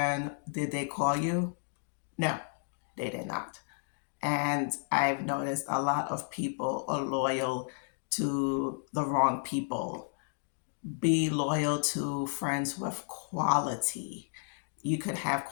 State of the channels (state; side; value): silent; right; 56 dB below the other